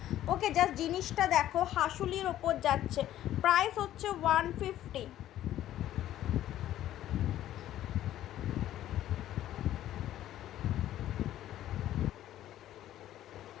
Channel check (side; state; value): right; quieter; 12.8 dB